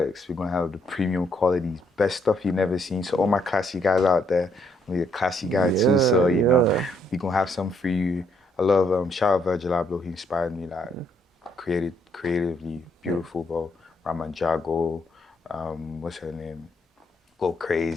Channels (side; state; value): both; normal; correlation 0.71